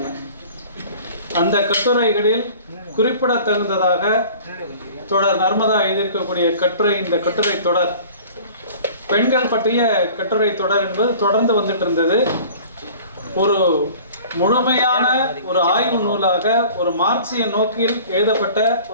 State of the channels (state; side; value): inverted; both; correlation -0.46